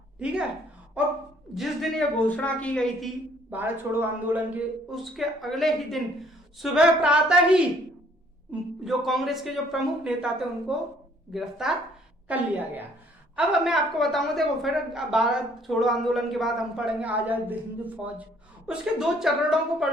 ठीक है, और जिस दिन ये घोषणा की गई थी भारत छोड़ो आंदोलन के, उसके अगले ही दिन सुबह प्रातः ही जो कांग्रेस के जो प्रमुख नेता थे उनको गिरफ्तार कर लिया गया। अब मैं आपको बताऊंगा, देखो फिर भारत छोड़ो आंदोलन के बाद हम पढ़ेंगे आजाद हिंद फौज। उसके दो चरणों को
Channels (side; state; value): both; normal; correlation 0.61